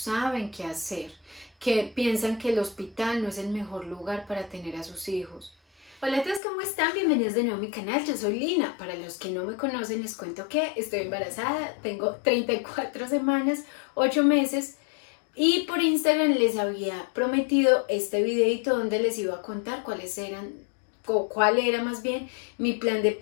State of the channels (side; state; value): right; drops out; at 6.4 s